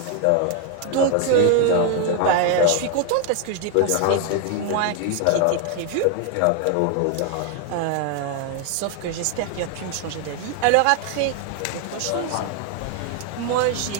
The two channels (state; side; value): different; both; correlation 0.01